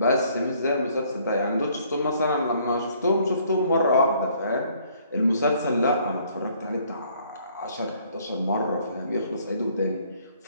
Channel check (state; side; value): inverted; both; correlation -0.63